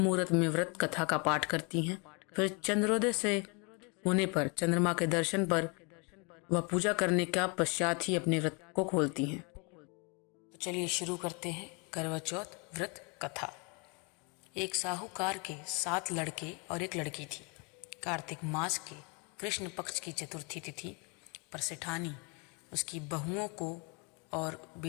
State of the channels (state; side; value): quieter; right; 32.3 dB